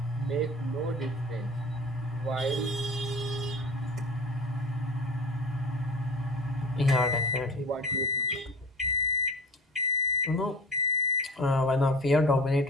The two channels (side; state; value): both; normal; correlation 0.37